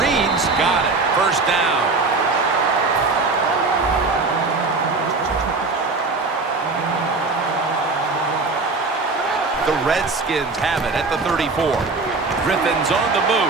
Reed's got it. First down. The Redskins have it at the 34. Griffin's on the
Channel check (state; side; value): quieter; left; 3.8 dB